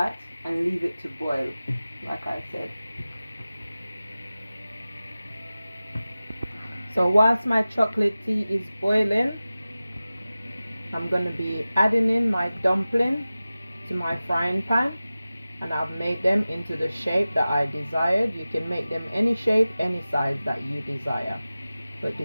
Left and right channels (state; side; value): inverted; both; correlation -0.96